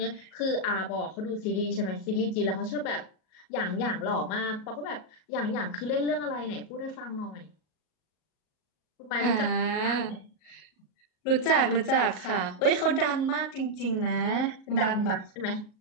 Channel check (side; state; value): right; late; 38 ms